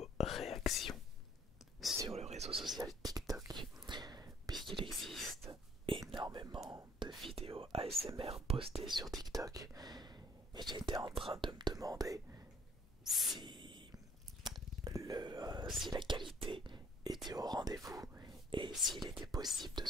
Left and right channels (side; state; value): both; normal; correlation 0.60